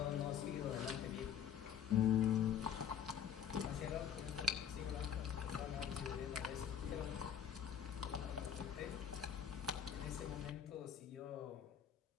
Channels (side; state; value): right; quieter; 8.4 dB